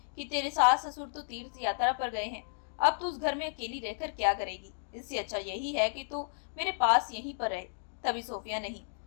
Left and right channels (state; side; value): silent; right; digital silence